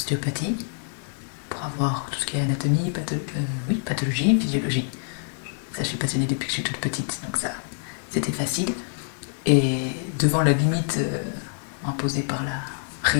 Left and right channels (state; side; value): silent; right; digital silence